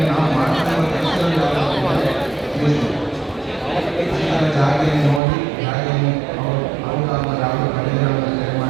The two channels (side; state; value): left; drops out; at 5.2 s